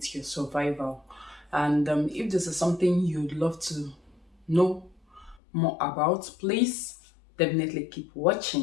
your survival. And if this is something you'd love to know more about, please definitely keep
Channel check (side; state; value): right; drops out; at 5.4 s